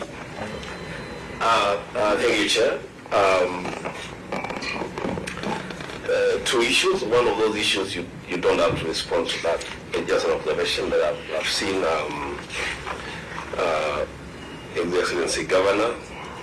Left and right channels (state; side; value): identical; both; correlation 1.00